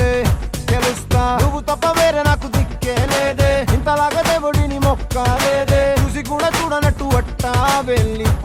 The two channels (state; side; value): identical; both; correlation 1.00